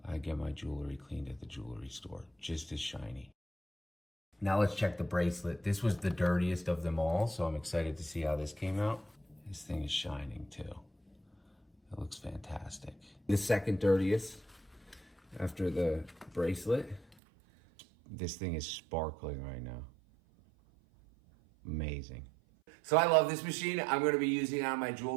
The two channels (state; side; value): drops out; left; at 17.2 s